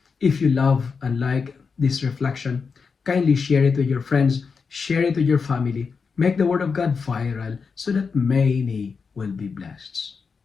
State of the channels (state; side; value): quieter; right; 5.3 dB